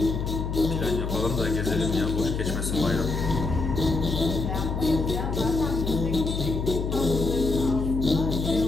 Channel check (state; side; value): noise; left; hum, 2 dB below the sound